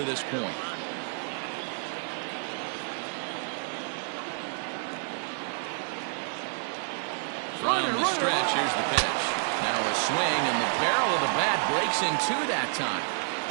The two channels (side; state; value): left; silent; 55 dB below the other